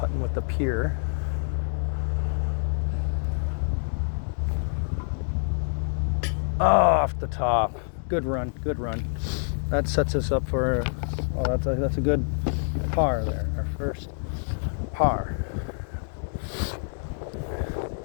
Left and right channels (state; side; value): silent; right; 60 dB below the other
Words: with the pier. Off the top. Good run, good run. That sets us up for, well, that's a good par there, our first par.